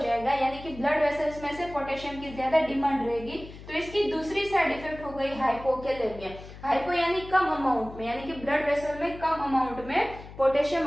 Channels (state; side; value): noise; left; hum, 15 dB below the sound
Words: यानी कि ब्लड वेसल्स में से पोटेशियम की ज्यादा डिमांड रहेगी। तो इसकी दूसरी साइड इफेक्ट हो गई हाइपोकैलेमिया। हाइपो यानी कम अमाउंट में, यानी कि ब्लड वेसल में कम अमाउंट में पोटेशियम